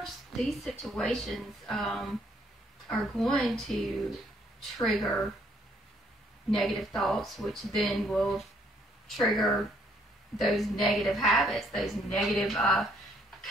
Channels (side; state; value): both; normal; correlation 0.67